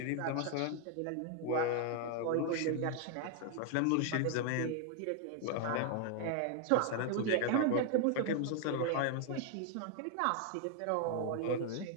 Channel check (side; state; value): both; different; correlation 0.00